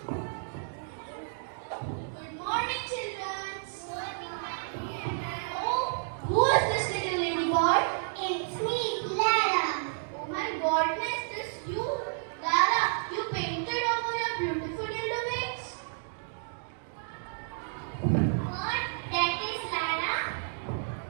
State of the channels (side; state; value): left; silent; digital silence